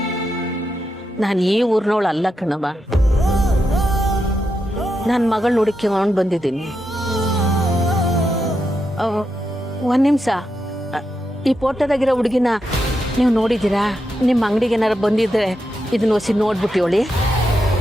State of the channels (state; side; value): normal; both; correlation 0.85